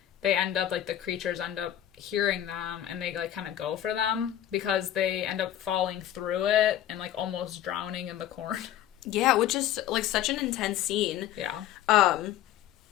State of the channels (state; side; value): quieter; right; 11.7 dB